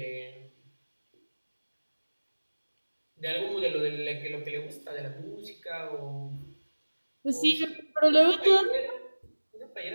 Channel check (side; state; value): both; inverted; correlation -1.00